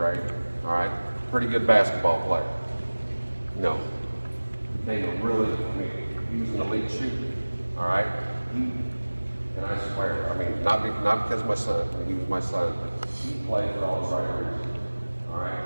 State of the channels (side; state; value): both; inverted; correlation -1.00